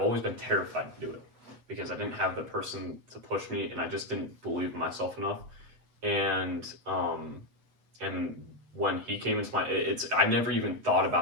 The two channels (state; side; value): late; left; 7.9 ms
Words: always been terrified to do it because I didn't have the person to push me, and I just didn't believe in myself enough. And when he came into my, I never even thought